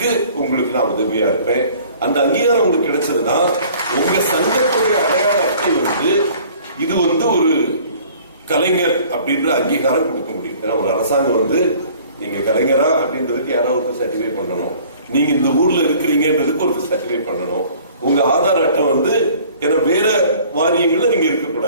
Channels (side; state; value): both; inverted; correlation -0.52